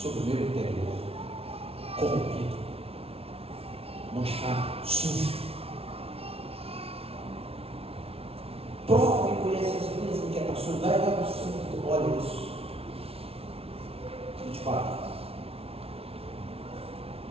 o meu interior, corrompido, manchado, sujo, prova e conhece as minhas inquietações, vai lá no fundo, olha isso. 24.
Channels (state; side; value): late; left; 0.29 ms